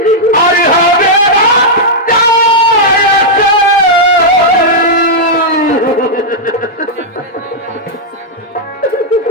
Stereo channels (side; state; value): both; normal; correlation -0.06